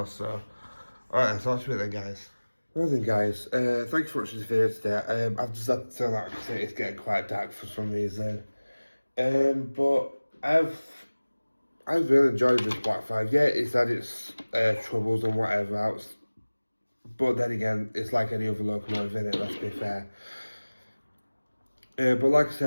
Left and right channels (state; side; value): inverted; both; correlation -1.00